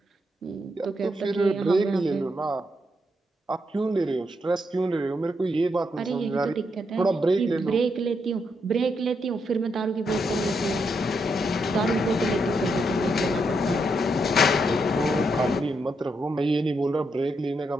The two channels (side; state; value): both; normal; correlation 0.80